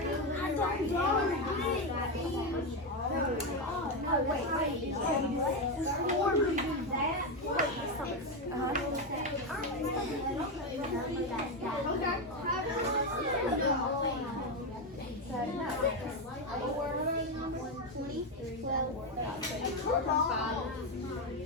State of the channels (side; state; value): both; normal; correlation 0.09